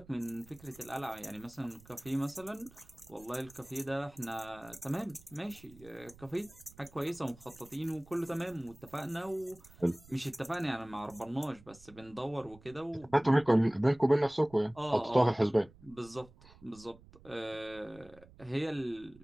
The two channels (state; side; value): noise; right; rumble, 23 dB below the sound